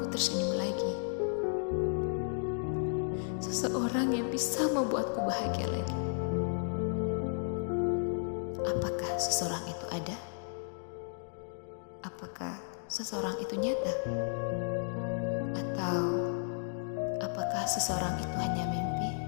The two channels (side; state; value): right; silent; digital silence